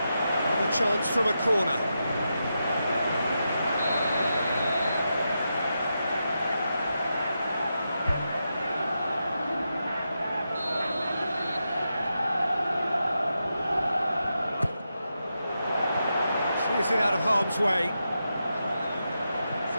Another chance from a corner. Clears it out of harm's way.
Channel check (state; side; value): inverted; both; correlation -0.87